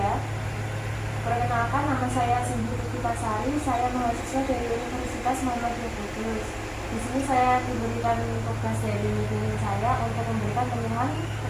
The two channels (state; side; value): identical; both; correlation 1.00